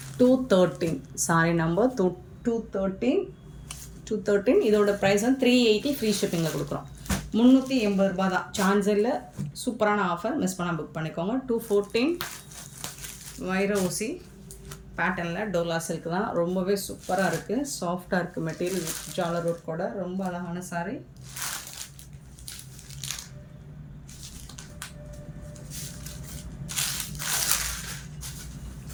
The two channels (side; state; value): both; identical; correlation 1.00